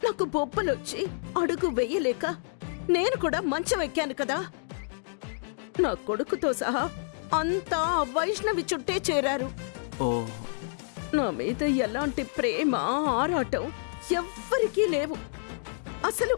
నాకు బొబ్బలొచ్చి అడుగు వెయ్యలేక నేను కూడా మంచం ఎక్కాను కదా. నా కొడుకుతో సహా అంతా ఆ వైష్ణవి చుట్టే చేరారు. ఓ నా మీద ఎలాంటి ప్రేమ ఆరాటం ఎవ్వరికీ లేవు. అసలు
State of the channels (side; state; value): right; silent; digital silence